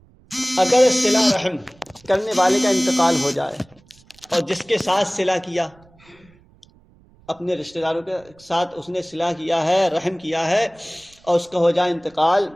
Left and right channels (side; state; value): right; noise; rumble, 29 dB below the sound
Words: اگر صلہ رحم کرنے والے کا انتقال ہو جائے اور جس کے ساتھ صلہ کیا، اپنے رشتہ داروں کے ساتھ اس نے صلہ کیا ہے، رحم کیا ہے، اور اس کا ہو جائے انتقال،